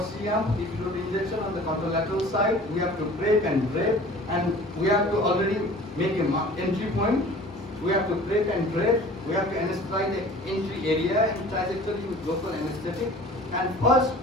CM epidural injection on the contralateral side. We have to break and drape, and we have to already make a entry point. We have to break and drape. We have to anesthetize the entry area and trajectory with local anesthetic. And first,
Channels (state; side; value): normal; both; correlation 0.45